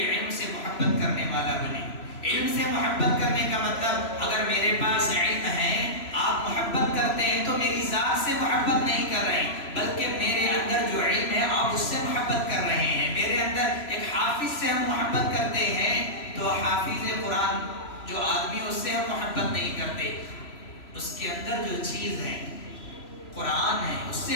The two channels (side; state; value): right; late; 3.0 ms